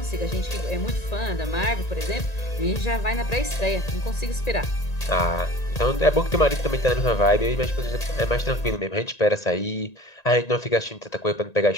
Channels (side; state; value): right; late; 1.9 ms